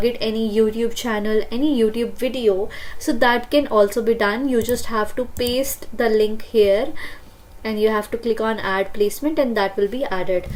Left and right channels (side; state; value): both; identical; correlation 1.00